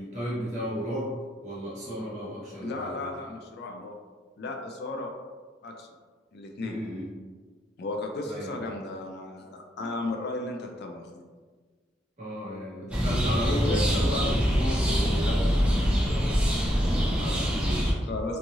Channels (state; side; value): normal; both; correlation 0.78